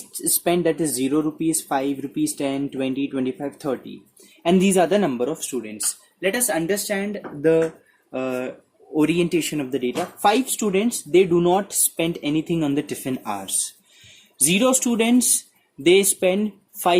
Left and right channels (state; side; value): identical; both; correlation 1.00